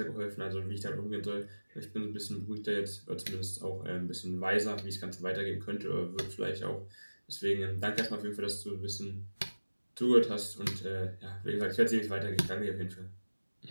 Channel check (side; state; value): both; inverted; correlation -1.00